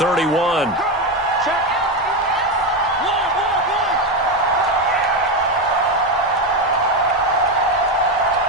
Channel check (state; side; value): normal; both; correlation 0.12